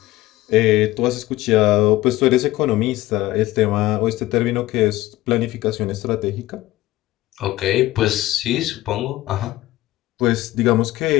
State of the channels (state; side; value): quieter; right; 17.0 dB